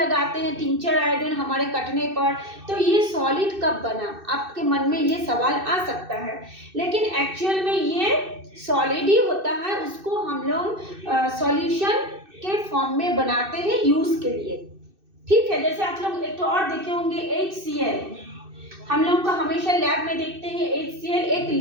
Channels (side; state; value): left; late; 2.6 ms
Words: हैं, टिंचर आयोडीन हमारे कटने पर। तो ये सॉलिड कब बना? आपके मन में ये सवाल आ सकता है। लेकिन एक्चुअल में ये सॉलिड ही होता है, उसको हम लोग सॉल्यूशन के फॉर्म में बनाते हैं यूज के लिए। ठीक है, जैसे आप लोग एक और देखे होंगे HCl। हम लोग का हमेशा लैब में देखते हैं HCl एक